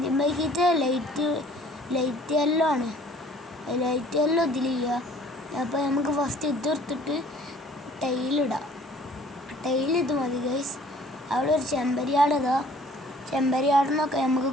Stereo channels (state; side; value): normal; both; correlation 0.54